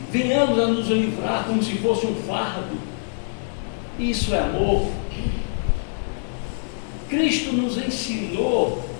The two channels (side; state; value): right; silent; digital silence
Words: venhamos a nos livrar como se fosse um fardo. Isso é amor. Cristo nos ensinou